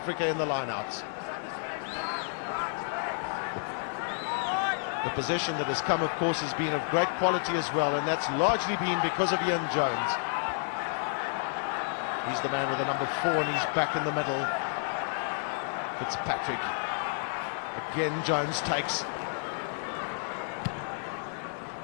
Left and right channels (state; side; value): silent; right; 57 dB below the other